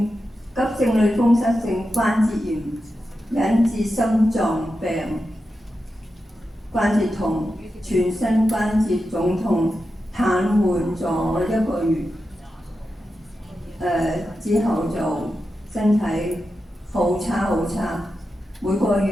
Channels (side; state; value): both; normal; correlation 0.90